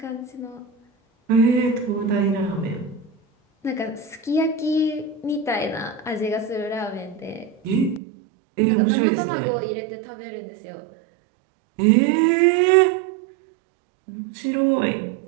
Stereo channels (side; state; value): left; drops out; at 8.0 s